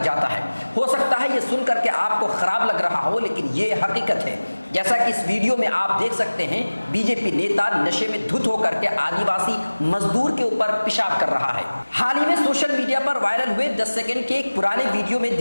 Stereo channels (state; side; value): inverted; both; correlation -1.00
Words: जाता है। हो सकता है ये सुनकर के आपको खराब लग रहा हो, लेकिन ये हकीकत है। जैसा कि इस वीडियो में आप देख सकते हैं, बीजेपी नेता नशे में धुत होकर के आदिवासी मजदूर के ऊपर पेशाब कर रहा है। हाल ही में सोशल मीडिया पर वायरल हुए 10 सेकंड के एक पुराने वीडियो में